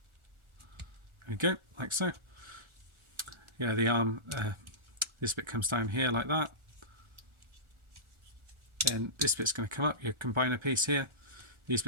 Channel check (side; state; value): left; late; 1.4 ms